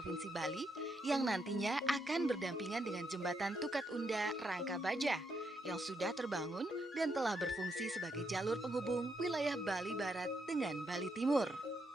Bali, yang nantinya akan berdampingan dengan Jembatan Tukat Unda Rangka Baja, yang sudah terbangun dan telah berfungsi sebagai jalur penghubung wilayah Bali Barat dengan Bali Timur.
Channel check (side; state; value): both; normal; correlation 0.79